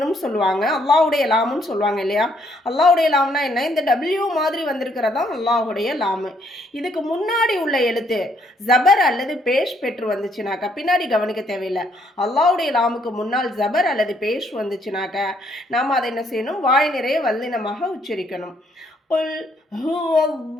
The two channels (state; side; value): normal; both; correlation 0.69